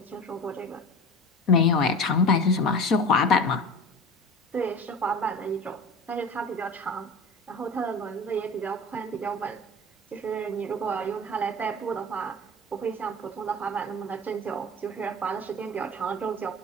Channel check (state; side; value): normal; both; correlation 0.34